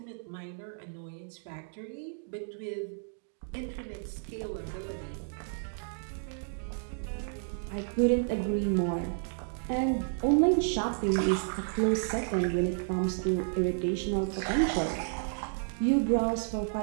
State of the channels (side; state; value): left; silent; digital silence